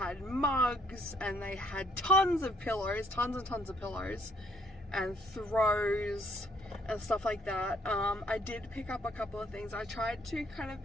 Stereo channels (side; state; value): both; normal; correlation 0.66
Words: mugs, and they had tons of pillows, tons and tons of pillows, and throws and stuff like that. I did pick up a couple of things. I tried to kind of